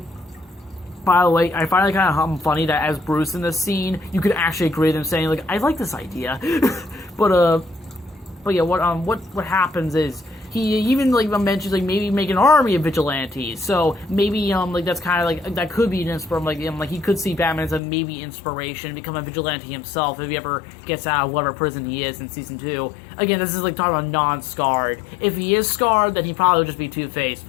the way, I find it kind of funny that as Bruce in this scene, you could actually agree with him saying I like this idea, but yeah, what happens is. He even mentions maybe make an army of vigilantes. So maybe that's kind of that could be an inspiration. He could see Batman as a maybe inspiration, become a vigilante himself if he ever gets out of whatever prison he is in season 2. Again, this is talking about non-scarred. If he is scarred, then he probably would just be Two-Face,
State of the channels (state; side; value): drops out; right; at 17.8 s